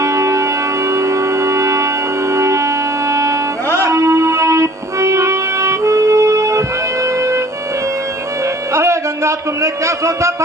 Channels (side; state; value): both; normal; correlation 0.52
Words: अरे गंगा, तुमने क्या सोचा था